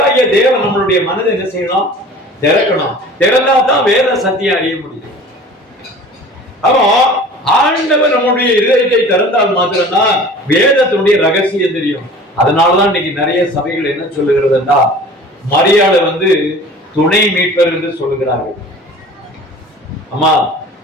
தேவன் நம்மளுடைய மனதை என்ன செய்யணும்? திறக்கணும். திறந்தா தான் வேத சத்தியம் அறிய முடியும். அப்போ ஆண்டவர் நம்முடைய இதயத்தை திறந்தால் மாத்திரம்தான் வேதத்தினுடைய ரகசியம் தெரியும். அதனாலதான் இன்னைக்கு நிறைய சபைகள் என்ன சொல்லுகிறதுன்னா மரியாதை துணை மீட்பர் என்று சொல்லுகிறார்கள். ஆமா,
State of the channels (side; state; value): both; normal; correlation 0.43